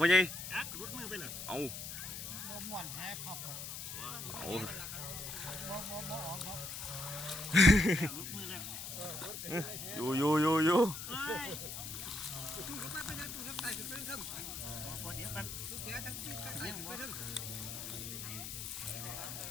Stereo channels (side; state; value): left; noise; hiss, 7 dB below the sound